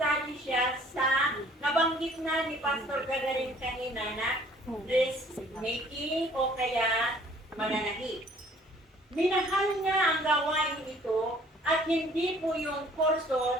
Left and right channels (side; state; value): both; normal; correlation 0.56